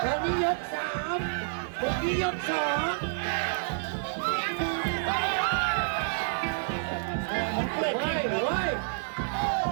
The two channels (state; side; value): silent; left; 59 dB below the other